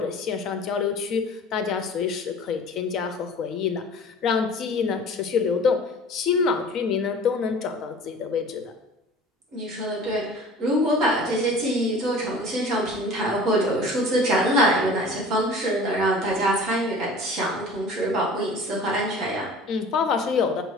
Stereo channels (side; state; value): both; normal; correlation 0.43